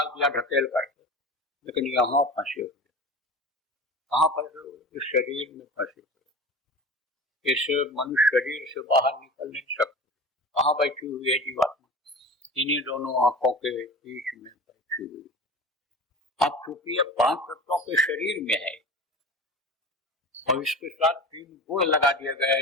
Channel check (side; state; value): both; normal; correlation 0.33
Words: दिया ढकेल करके, लेकिन यहाँ फंसे हुए। कहाँ फंसे हुए? इस शरीर में फंसे हुए। इस मनुष्य शरीर से बाहर निकल नहीं सकते। कहाँ बैठी हुई है जीवात्मा? इन्हीं दोनों आंखों के बीच में बैठी हुई। अब चूंकि ये 5 तत्वों के शरीर में है, और इसके साथ 3 गुण लगा दिए